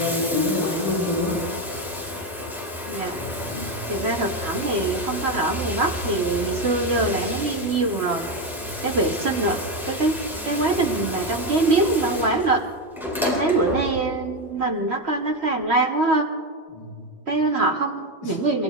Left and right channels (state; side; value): normal; both; correlation 0.11